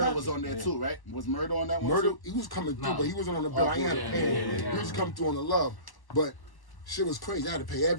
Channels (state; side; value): late; right; 1.1 ms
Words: was on there too, right? Was Murder on that one? Murder, too? he was coming through, but he wasn't on the bill. I ain't had to pay him. He was coming through on the love. But shit was crazy. I had to pay